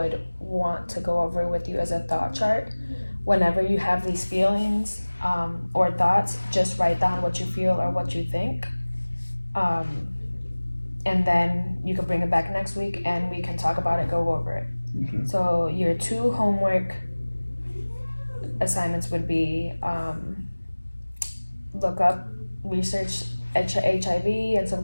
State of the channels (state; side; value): inverted; both; correlation -1.00